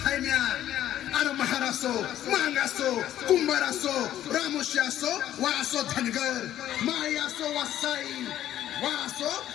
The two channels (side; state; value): right; quieter; 12.1 dB